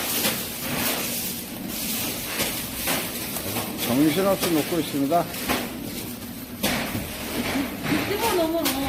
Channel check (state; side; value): identical; both; correlation 1.00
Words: 정신없이 먹고 있습니다. 집어넣으면